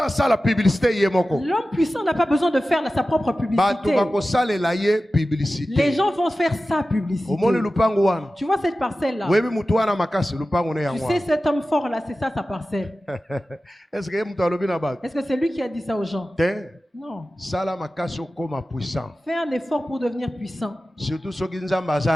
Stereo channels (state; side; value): normal; both; correlation 0.95